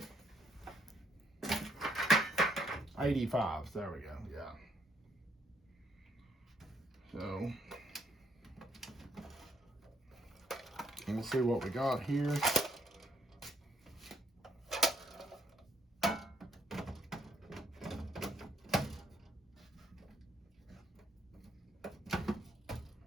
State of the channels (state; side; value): normal; both; correlation 0.70